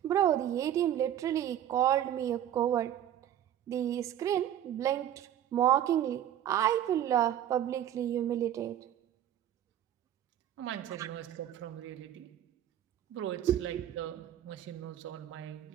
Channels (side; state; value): left; quieter; 11.0 dB